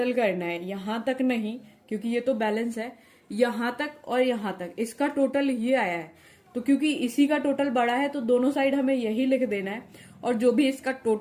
करना है, यहां तक नहीं क्योंकि ये तो बैलेंस है, यहां तक और यहां तक, इसका टोटल ये आया है। तो क्योंकि इसी का टोटल बड़ा है तो दोनों साइड हमें यही लिख देना है, और जो भी इसका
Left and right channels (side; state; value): both; identical; correlation 1.00